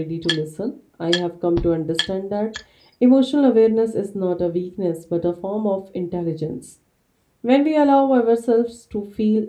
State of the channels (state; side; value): identical; both; correlation 1.00